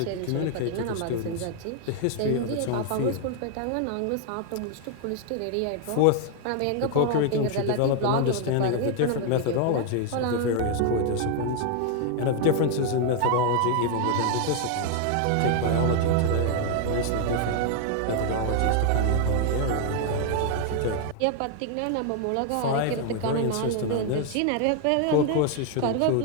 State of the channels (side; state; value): both; different; correlation 0.00